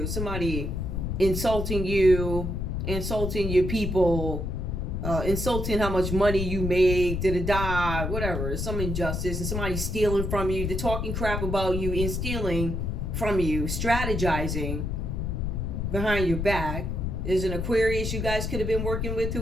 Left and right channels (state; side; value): noise; left; rumble, 2 dB below the sound